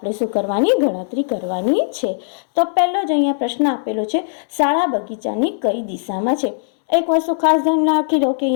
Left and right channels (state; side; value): silent; right; digital silence